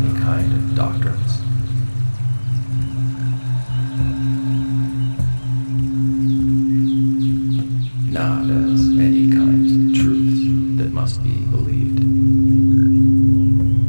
kind of doctrines, not as any kinds of truths that must be believed,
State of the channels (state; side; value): inverted; both; correlation -1.00